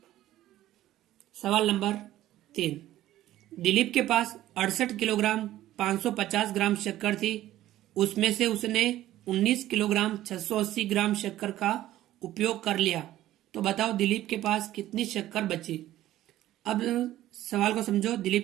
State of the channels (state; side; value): quieter; left; 14.1 dB